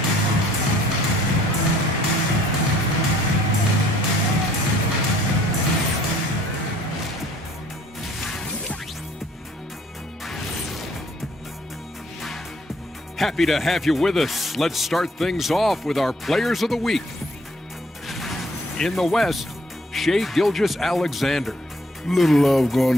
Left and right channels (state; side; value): normal; both; correlation 0.61